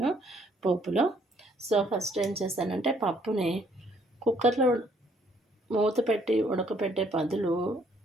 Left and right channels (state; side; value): normal; both; correlation 0.65